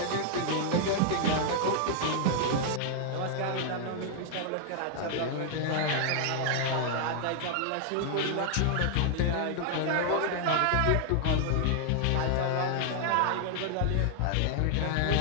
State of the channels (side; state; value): both; different; correlation 0.00